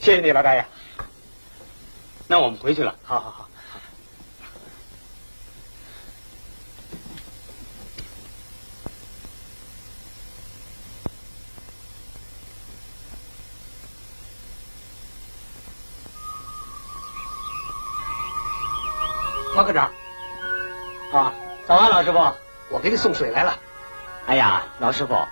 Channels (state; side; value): inverted; both; correlation -1.00